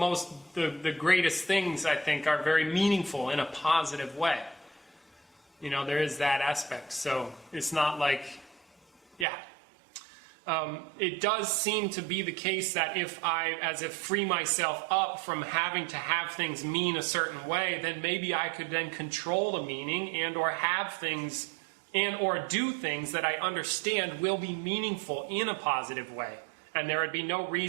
greatest things, I think, are very meaningful in a positive way. You know, there is that aspect. So it's not like, it does seem to be the case that if I, as if free myself up from having to have things mean a certain way, then maybe I could then control the meaning and or have things and or do things that I understand will be meaningful in a positive way. And there would be no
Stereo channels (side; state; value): left; drops out; at 9.2 s